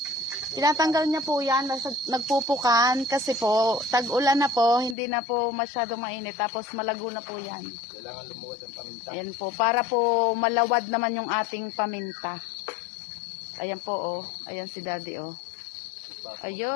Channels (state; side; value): drops out; right; at 5.0 s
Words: Tinatanggal niya po yan, nagpupukan kasi po, tag-ulan na po, hindi na po masyadong mainit, tapos malago na po yan. Kailangan lumuwad ang paminta. Ayan po, para po malawad naman yung ating paminta. Ayan po, oh. Ayan si Daddy, oh.